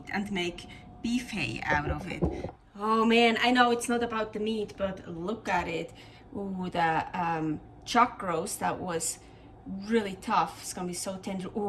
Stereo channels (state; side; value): identical; both; correlation 1.00